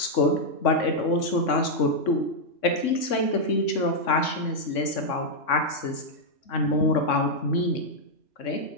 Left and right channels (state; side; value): late; right; 3.6 ms